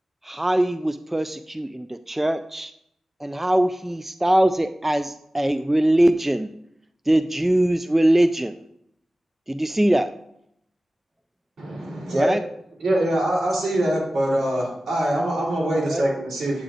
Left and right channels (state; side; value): normal; both; correlation 0.97